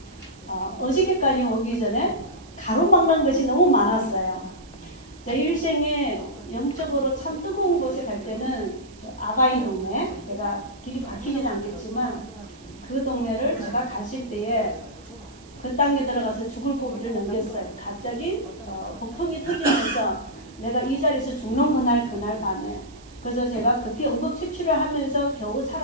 어저께까지 오기 전에 가로막는 것이 너무 많았어요. 제 일생에 영적으로 참 뜨거운 곳에 갈 때는 아가이 동네, 제가 길이 바뀌지는 않겠지만 그 동네를 제가 갔을 때에 그 땅에 들어가서 죽을 고비를 넘겼어요. 갑자기 복통이 터지면서 내가 이 자리에서 죽는 그날 밤에 그래서 제가 그때 응급처치를 하면서 겨우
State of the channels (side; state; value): right; noise; hiss, 25 dB below the sound